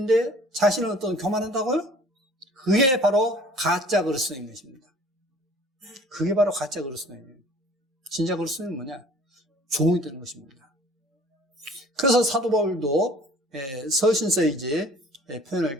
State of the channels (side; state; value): both; normal; correlation 0.50